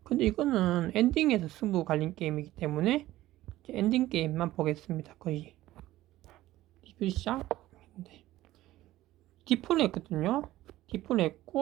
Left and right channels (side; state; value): left; quieter; 15.7 dB